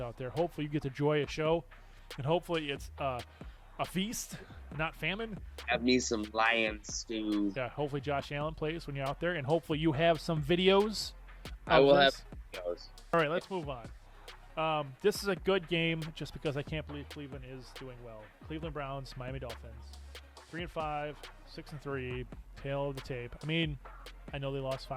out there. Hopefully you get to enjoy a show, and hopefully it's a feast, not famine. Have me some lion stew. Yeah, hopefully Josh Allen plays when you're out there, and hopefully you have some videos. I will have videos. All right, let's move on. This is a good game just because I can't believe Cleveland is doing well. Cleveland Browns, Miami Dolphins, 3-5, 6-3, tail of the tape. I mean, I know they lost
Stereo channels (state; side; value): identical; both; correlation 1.00